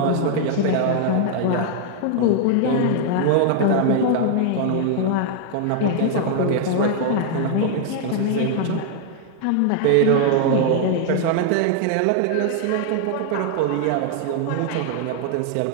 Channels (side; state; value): both; different; correlation -0.01